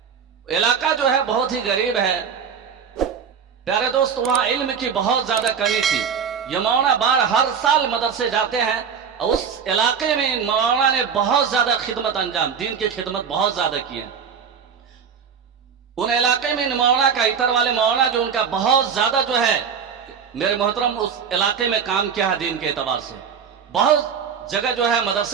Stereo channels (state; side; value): quieter; left; 6.9 dB